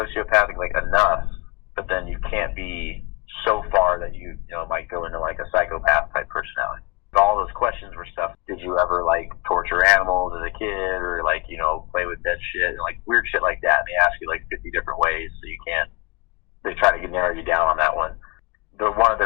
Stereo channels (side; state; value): right; quieter; 25.2 dB